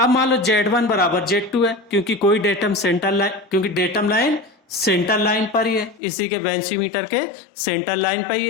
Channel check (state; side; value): drops out; right; at 6.0 s